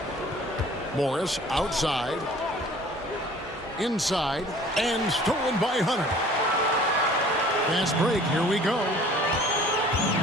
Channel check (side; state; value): both; normal; correlation 0.50